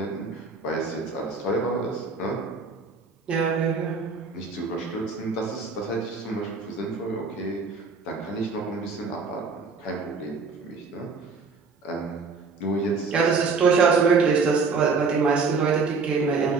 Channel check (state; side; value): quieter; left; 4.5 dB